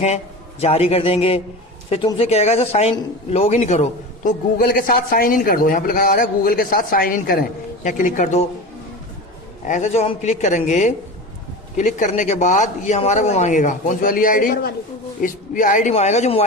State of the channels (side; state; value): both; normal; correlation 0.29